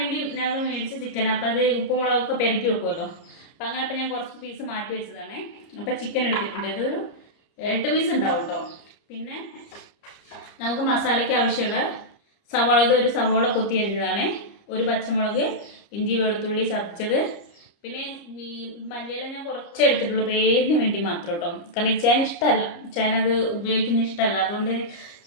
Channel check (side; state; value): right; late; 30 ms